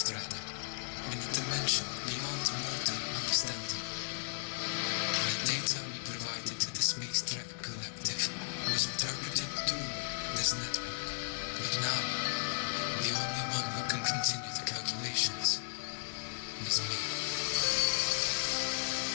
in a dimension beyond mortal understanding. The data we provided to the Space Trek Collective was interpreted through this network, but now the only one who can continue the calculations is me.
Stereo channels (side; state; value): right; silent; digital silence